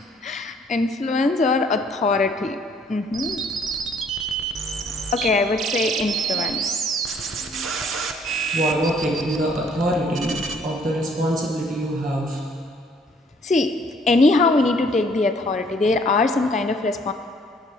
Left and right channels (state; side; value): normal; both; correlation 0.61